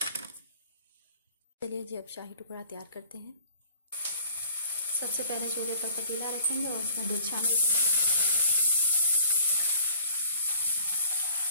चलिए जी, अब शाही टुकड़ा तैयार करते हैं। सबसे पहले चूल्हे पर पतीला रखेंगे और उसमें दूध शामिल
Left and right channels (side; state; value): both; inverted; correlation -0.52